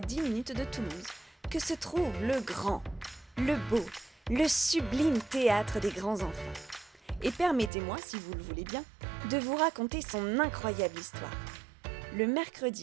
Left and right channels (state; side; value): drops out; left; at 7.7 s